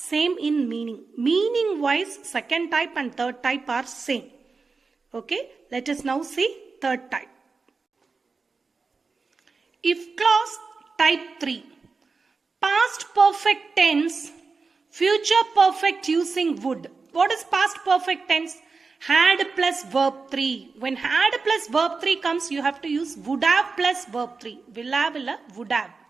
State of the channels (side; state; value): left; quieter; 4.4 dB